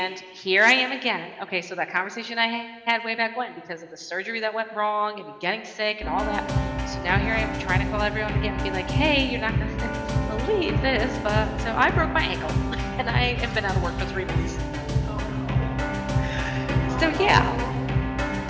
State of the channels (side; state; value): both; identical; correlation 1.00